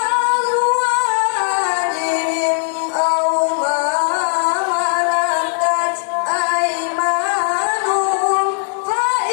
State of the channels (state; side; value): silent; right; digital silence